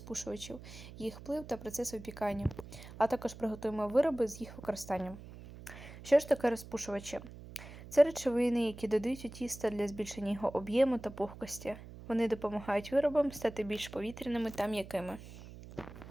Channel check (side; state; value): right; noise; hum, 15 dB below the sound